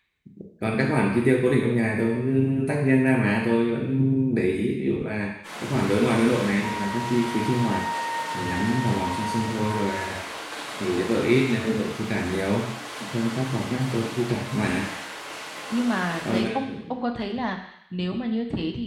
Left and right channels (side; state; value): both; identical; correlation 1.00